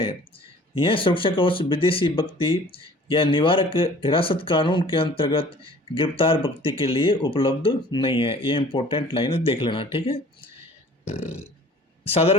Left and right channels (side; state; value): both; normal; correlation 0.50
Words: यह सुरक्षा कवच विदेशी व्यक्ति या निवारक हिरासत कानून के अंतर्गत गिरफ्तार व्यक्ति के लिए उपलब्ध नहीं है। ये इंपॉर्टेंट लाइन है, देख लेना। ठीक है,